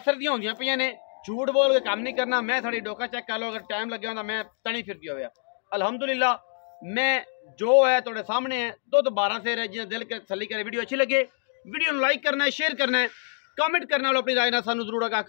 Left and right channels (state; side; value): silent; right; digital silence